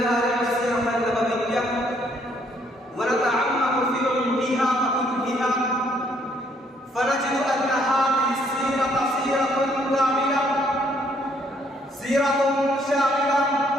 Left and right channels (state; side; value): normal; both; correlation 0.67